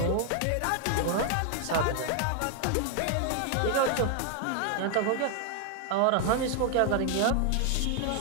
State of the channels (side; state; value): both; different; correlation 0.00